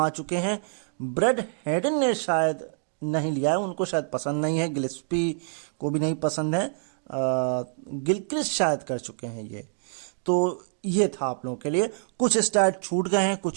चुके हैं, ब्रेड हेडन ने शायद नहीं लिया है, उनको शायद पसंद नहीं है, गिल्स्पी को भी नहीं पसंद है, गिलक्रिस्ट शायद कर चुके हैं ये। तो ये था आप लोगों के लिए। कुछ स्टैट छूट गए हैं,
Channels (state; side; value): silent; left; digital silence